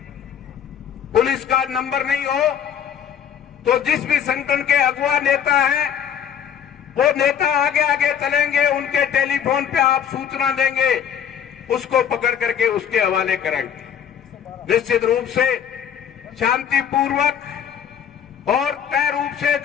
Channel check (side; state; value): right; quieter; 8.6 dB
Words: पुलिस का नंबर नहीं हो तो जिस भी संगठन के अगुवा नेता हैं वो नेता आगे आगे चलेंगे, उनके टेलीफोन पे आप सूचना देंगे, उसको पकड़ करके उसके हवाले करेंगे। निश्चित रूप से शांतिपूर्वक और तय रूप से